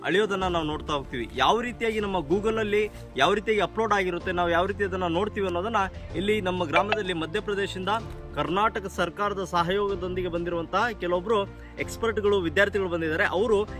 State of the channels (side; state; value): both; identical; correlation 1.00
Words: ಅಳೆಯೋದನ್ನ ನಾವು ನೋಡ್ತಾ ಹೋಗ್ತೀವಿ. ಯಾವ ರೀತಿಯಾಗಿ ನಮ್ಮ ಗೂಗಲಲ್ಲಿ ಯಾವ ರೀತಿಯಾಗಿ ಅಪ್ಲೋಡ್ ಆಗಿರುತ್ತೆ, ನಾವು ಯಾವ ರೀತಿ ಅದನ್ನು ನೋಡ್ತೀವಿ ಅನ್ನೋದನ್ನ ಇಲ್ಲಿ ನಮ್ಮ ಗ್ರಾಮದಲ್ಲಿ ಮಧ್ಯಪ್ರದೇಶದಿಂದ ಕರ್ನಾಟಕ ಸರ್ಕಾರದ ಸಹಯೋಗದೊಂದಿಗೆ ಬಂದಿರುವಂತಹ ಕೆಲವೊಬ್ರು ಎಕ್ಸ್ಪರ್ಟ್ಗಳು, ವಿದ್ಯಾರ್ಥಿಗಳು ಬಂದಿದ್ದಾರೆ. ಅವರು